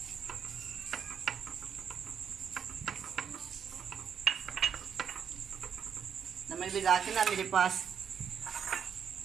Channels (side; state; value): left; quieter; 7.5 dB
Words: नमक लगा के ना मेरे पास